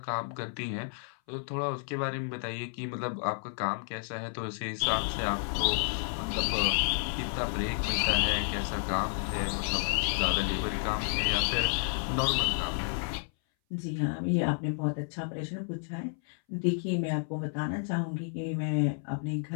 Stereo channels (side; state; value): right; silent; 57 dB below the other